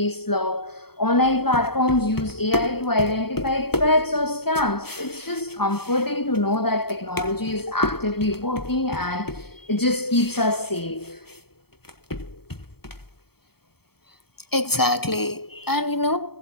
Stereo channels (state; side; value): late; right; 0.96 ms